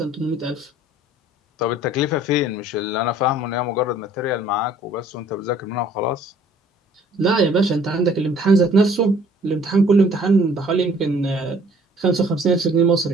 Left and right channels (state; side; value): normal; both; correlation 0.56